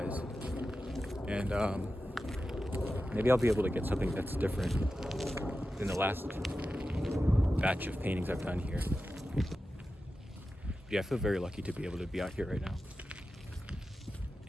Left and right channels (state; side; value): normal; both; correlation 0.92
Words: And maybe I'll be able to get something that's different than the last batch of paintings I've done here. Yeah, I feel very lucky to be able to be out here right now